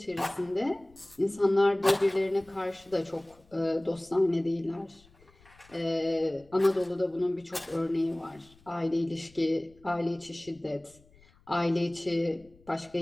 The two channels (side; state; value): left; noise; rumble, 29 dB below the sound